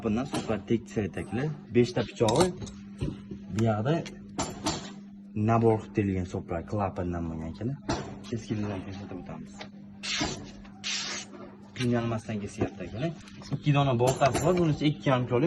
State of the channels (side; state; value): both; identical; correlation 1.00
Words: super tekis aytaklar. 5 ta pichog'i bu yoqda nabor qilib terilgan soplar klapindan bo'lgan ekan. Keskinlikdan ko'rsatib o'tamiz. Qiynalmasdan kesyapti ekan. 2 dona boltasi bor, bunisi 2,5